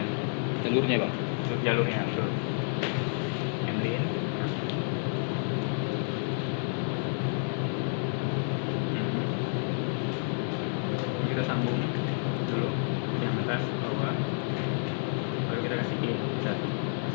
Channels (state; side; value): silent; right; digital silence